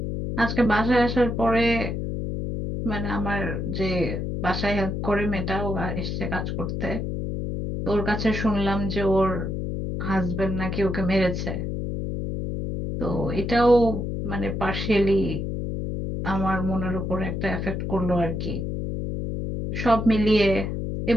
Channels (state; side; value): noise; left; hum, 3 dB below the sound